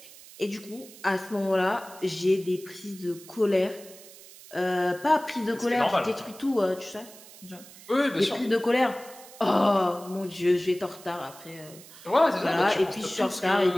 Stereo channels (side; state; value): right; noise; hiss, 19 dB below the sound